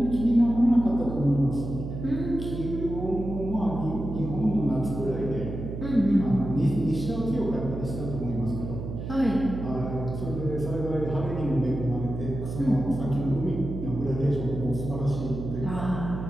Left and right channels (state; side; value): noise; right; hum, 7 dB below the sound